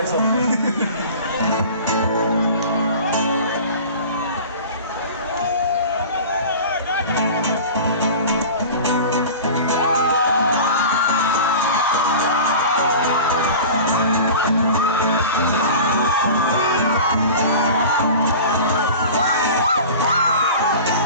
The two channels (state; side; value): inverted; both; correlation -0.37